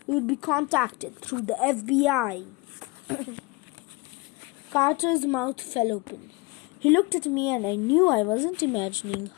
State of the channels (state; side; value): quieter; right; 25.0 dB